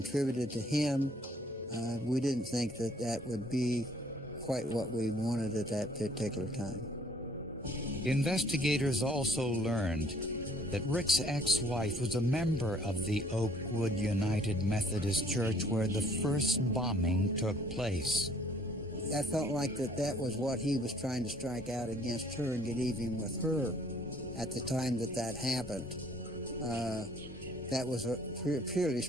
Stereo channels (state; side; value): normal; both; correlation 0.60